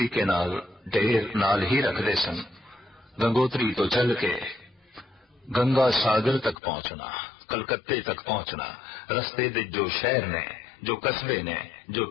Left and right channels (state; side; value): drops out; right; at 6.6 s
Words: नाल ढेर नाल ही रखते सन। गंगोत्री तो चल के गंगा सागर तक पहुंचना, कलकत्ते तक पहुंचना, रस्ते दे जो शहर ने, जो कस्बे ने, जो